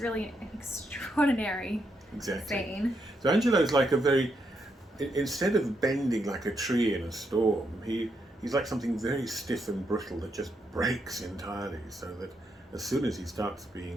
an extraordinary scene. So Angelo's like instead of bending like a tree in a storm, he's like something very stiff and brittle that just breaks entirely, so that as soon as he starts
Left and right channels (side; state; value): both; normal; correlation 0.79